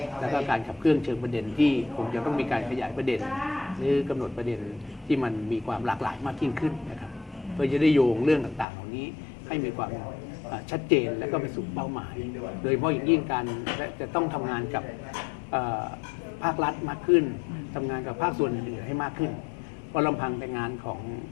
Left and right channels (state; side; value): drops out; right; at 8.7 s